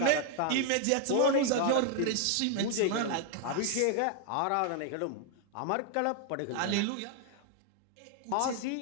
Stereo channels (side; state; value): both; different; correlation 0.00